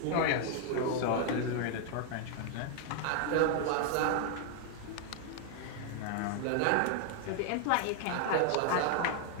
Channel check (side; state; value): both; different; correlation 0.00